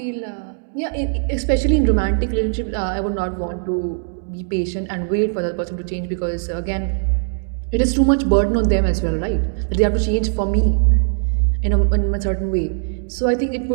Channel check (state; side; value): silent; left; 66 dB below the other